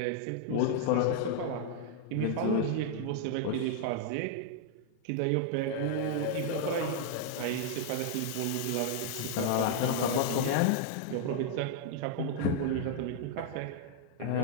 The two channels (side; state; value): both; different; correlation 0.00